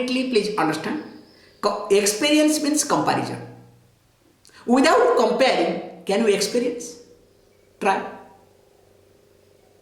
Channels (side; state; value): both; identical; correlation 1.00